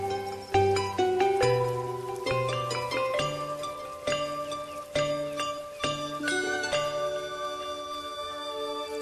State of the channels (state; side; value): identical; both; correlation 1.00